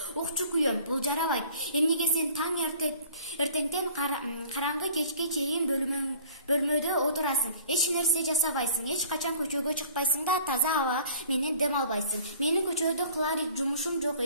Укчу күйөөм, бул жарабайт. Эмнеге сен таң эртеңден караңгы кечке чейин бөлмөдө отурасың? Эч нерсе жасабайсың, эч качан көчөгө чыкпайсың да таза аба менен дем албайсың. Менин көчөдө кылар жумушум жок,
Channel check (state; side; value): inverted; both; correlation -0.50